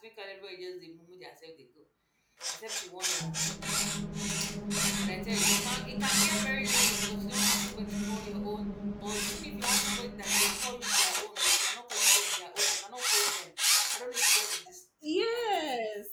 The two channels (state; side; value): identical; both; correlation 1.00